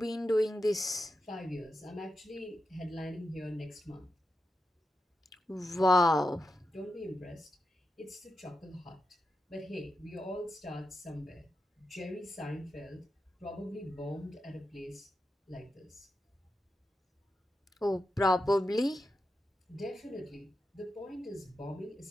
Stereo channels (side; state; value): both; normal; correlation 0.89